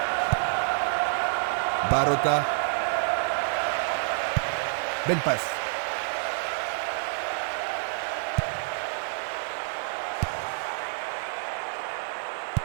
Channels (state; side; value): silent; left; 59 dB below the other